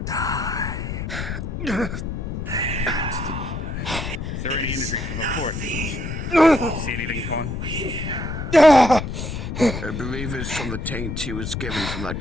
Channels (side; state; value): left; noise; rumble, 5 dB below the sound